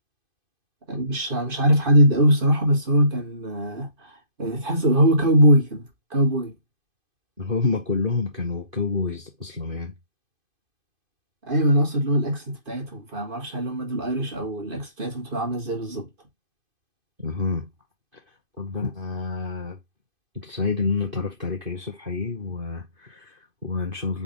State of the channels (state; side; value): late; left; 2.5 ms